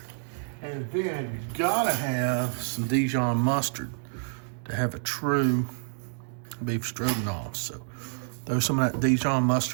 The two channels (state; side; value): silent; left; 58 dB below the other